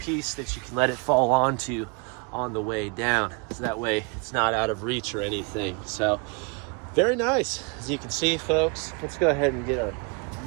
that you can let it fall onto on the way down. So that way it's not out of reach or anything. So very nice. As you can see, folks, let's go ahead and get our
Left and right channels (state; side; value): quieter; left; 32.6 dB